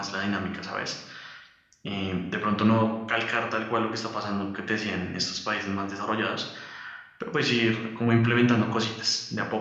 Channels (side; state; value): both; identical; correlation 1.00